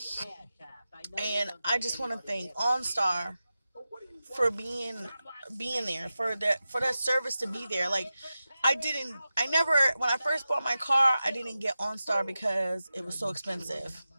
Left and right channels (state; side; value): inverted; both; correlation -0.93